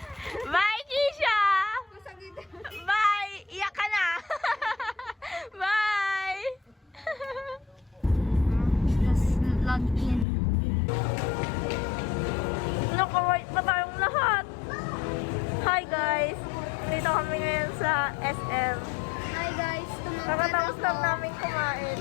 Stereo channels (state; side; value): drops out; right; at 10.2 s